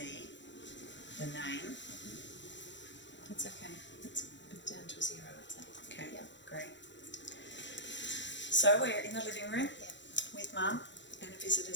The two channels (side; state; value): right; late; 0.53 ms